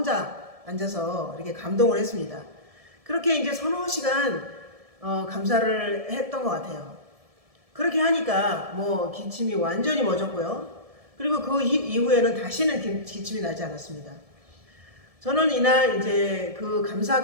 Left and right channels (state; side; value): late; left; 1.7 ms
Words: 앉아서 이렇게 감동을 했습니다. 그렇게 이제 서너 시간 감사를 했던 것 같아요. 그렇게 하니까 뭐 기침이 완전히 멎었고요. 그리고 그 이후에는 다시는 기침이 나지 않았습니다. 저는 이날 이제 그